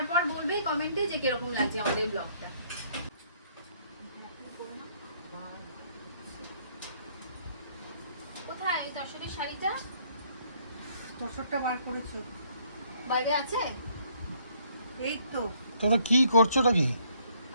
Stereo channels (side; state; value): both; inverted; correlation -0.65